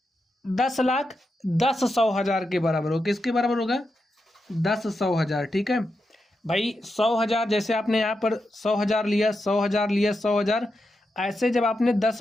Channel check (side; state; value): both; normal; correlation 0.87